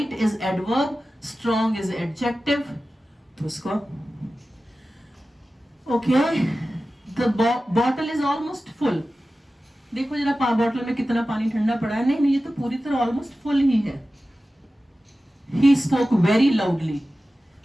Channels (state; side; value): normal; both; correlation 0.95